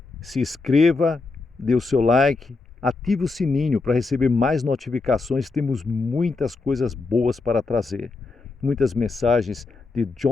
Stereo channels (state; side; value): quieter; right; 3.9 dB